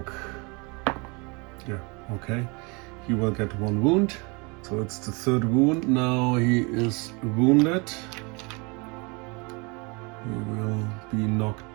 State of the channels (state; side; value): quieter; left; 29.4 dB